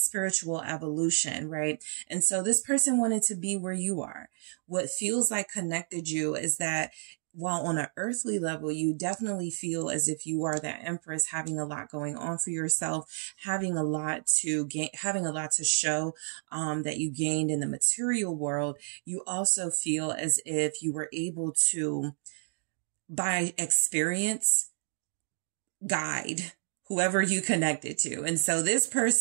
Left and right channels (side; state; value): left; silent; digital silence